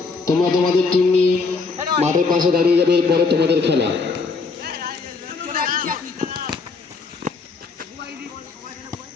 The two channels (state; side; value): quieter; right; 4.5 dB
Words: তোমরা তোমাদের টিম নিয়ে মাঠের পাশে দাঁড়িয়ে যাবে, এরপরে তোমাদের খেলা।